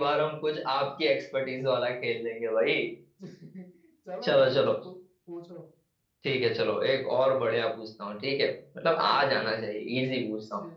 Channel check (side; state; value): both; identical; correlation 1.00